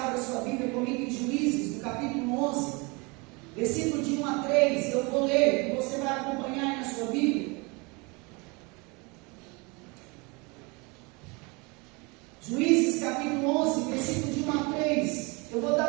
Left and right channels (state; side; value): quieter; left; 28.2 dB